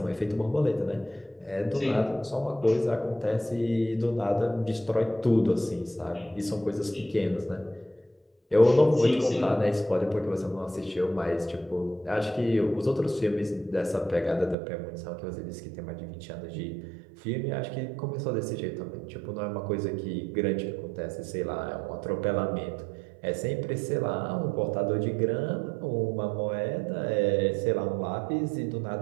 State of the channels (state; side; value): drops out; left; at 14.6 s